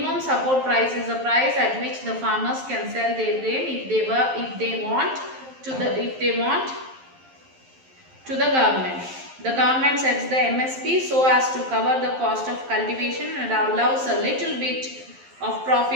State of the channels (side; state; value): left; late; 11 ms